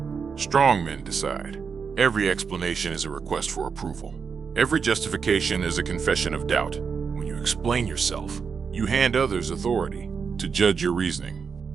Strong men decide. Every explanation is a request for approval. Every justification is a confession of doubt. When you explain yourself, you hand others authority to judge your reasoning.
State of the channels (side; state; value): left; quieter; 5.9 dB